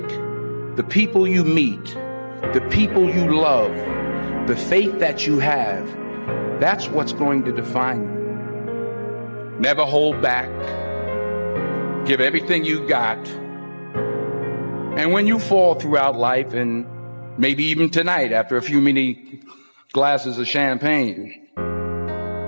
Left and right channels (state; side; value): inverted; both; correlation -1.00